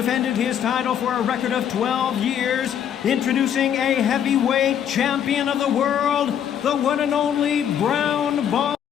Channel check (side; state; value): right; quieter; 9.2 dB